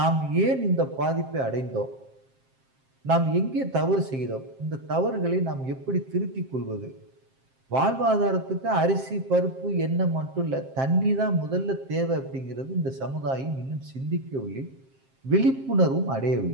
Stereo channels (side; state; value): left; late; 7.6 ms